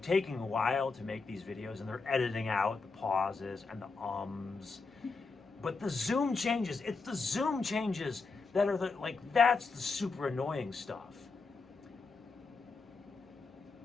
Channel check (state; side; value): quieter; right; 4.3 dB